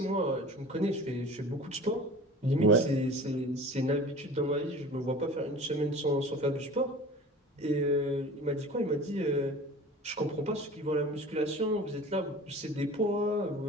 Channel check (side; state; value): both; normal; correlation 0.40